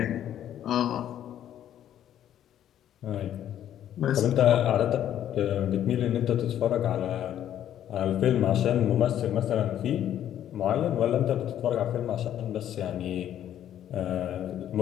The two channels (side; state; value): right; quieter; 11.0 dB